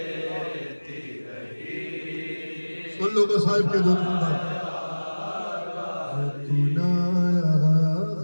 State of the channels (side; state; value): both; inverted; correlation -1.00